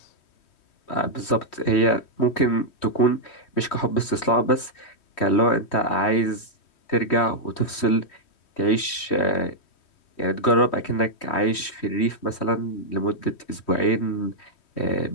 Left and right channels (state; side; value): late; right; 3.1 ms